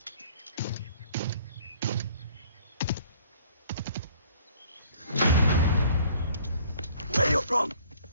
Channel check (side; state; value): both; inverted; correlation -0.55